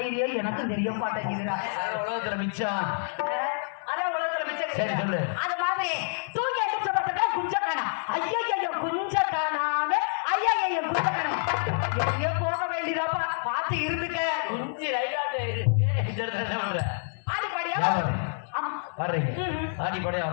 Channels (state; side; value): silent; right; digital silence